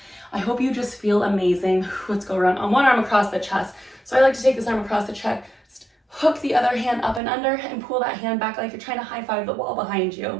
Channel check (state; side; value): drops out; left; at 7.2 s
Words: I hope you just feel amazing. Let's go around on one arm across the chest. So I like to take this arm across the chest, hook the other hand up and under, and pull that hand back like you're trying to high five the wall behind